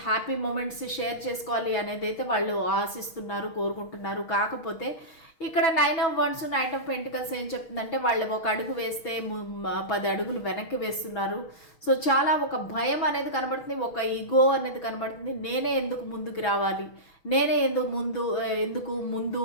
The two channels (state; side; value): late; right; 6.3 ms